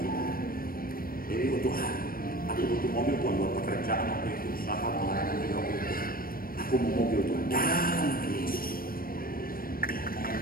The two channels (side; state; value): right; late; 0.42 ms